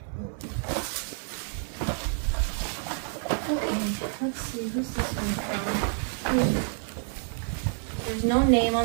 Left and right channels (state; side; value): silent; left; 59 dB below the other